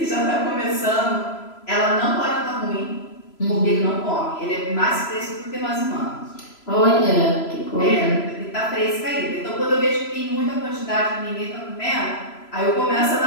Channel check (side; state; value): right; late; 3.0 ms